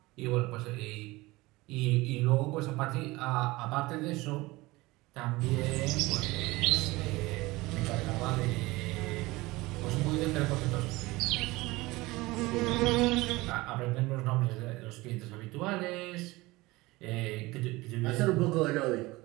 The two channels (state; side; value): quieter; left; 20.9 dB